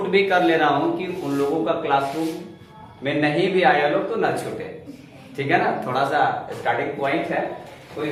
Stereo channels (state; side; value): identical; both; correlation 1.00